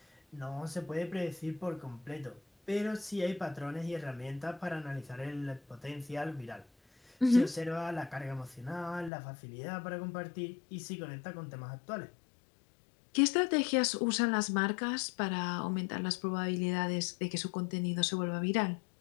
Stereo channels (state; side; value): drops out; right; at 9.1 s